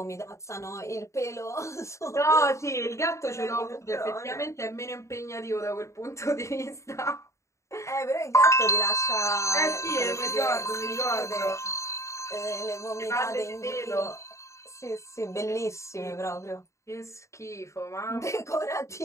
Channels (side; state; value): right; late; 0.14 ms